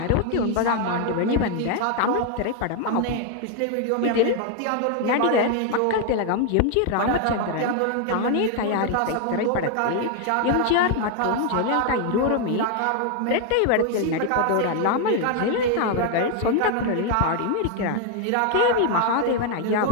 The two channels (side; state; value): both; different; correlation 0.00